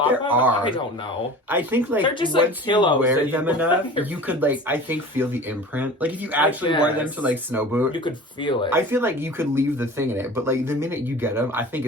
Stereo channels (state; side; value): normal; both; correlation 0.38